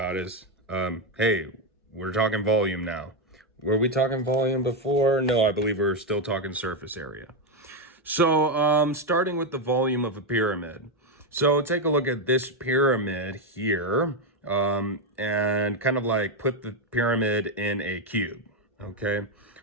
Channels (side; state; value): both; normal; correlation 0.06